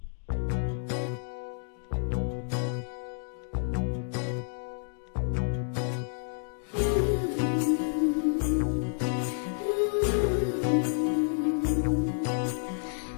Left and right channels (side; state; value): right; silent; digital silence